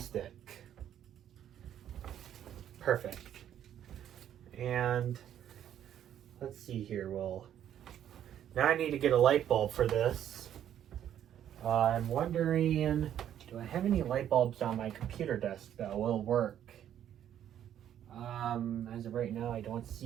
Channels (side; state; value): left; quieter; 10.4 dB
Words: Perfect. And let's see here. Well, now I need to get a light bulb for this. I'm wondering, do I have any light bulbs on my computer desk that will work? As of right now, I don't